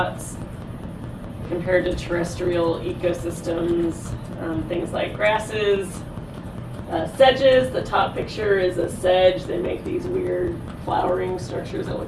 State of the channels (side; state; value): both; identical; correlation 1.00